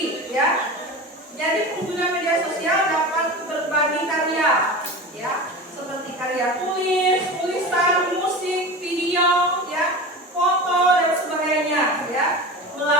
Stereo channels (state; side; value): normal; both; correlation 0.30